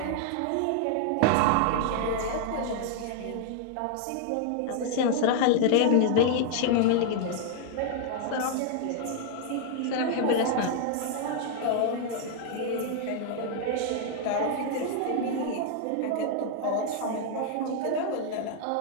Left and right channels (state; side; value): different; both; correlation 0.00